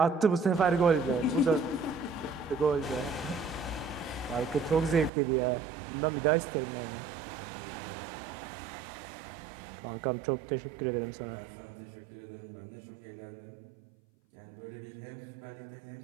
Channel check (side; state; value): left; drops out; at 5.1 s